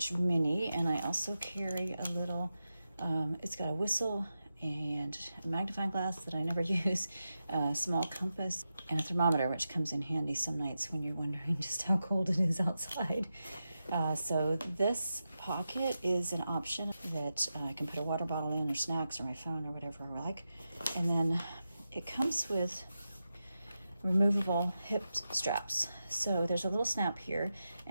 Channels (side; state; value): both; inverted; correlation -0.90